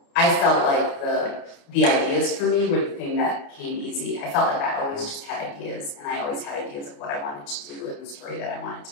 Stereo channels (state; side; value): late; right; 29 ms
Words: I felt like the ideas for me were the thing that came easy. I felt like I always just had ideas, and I always had ideas of what I wanted to do and the story that I wanted